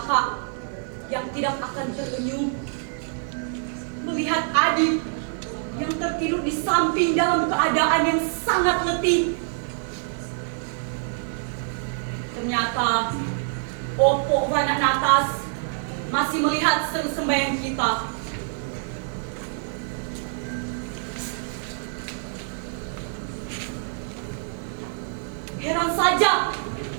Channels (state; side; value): silent; left; digital silence